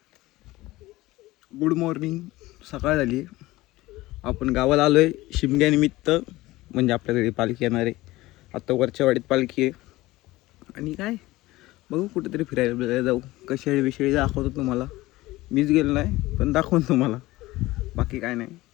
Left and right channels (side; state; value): right; quieter; 18.7 dB